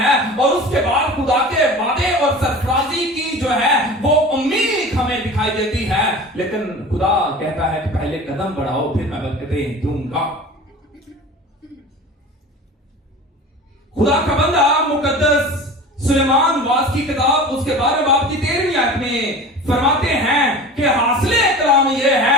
और उसके बाद खुदा के वादे और सरफराजी की जो है वो उम्मीद हमें दिखाई देती है। लेकिन खुदा कहता है कि पहले कदम बढ़ाओ, फिर मैं बरकतें दूंगा। खुदा का बंदा मुकद्दस सुलेमान वास की किताब उसके 12वें बाब की 13वीं आयत में फरमाते हैं कि हासिले कलाम यह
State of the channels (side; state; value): both; normal; correlation 0.37